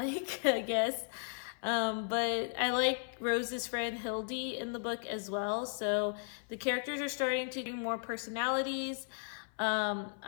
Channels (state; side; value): silent; right; 54 dB below the other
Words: I guess. But I like Rose's friend Hildy in the book as well. So the characters are starting to get more personalities. I